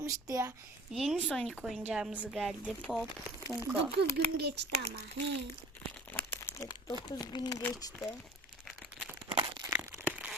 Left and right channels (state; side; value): normal; both; correlation 0.44